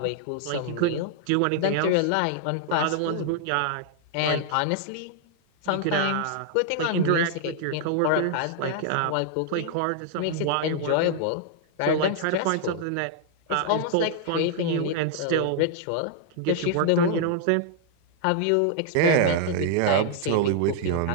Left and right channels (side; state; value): both; different; correlation -0.01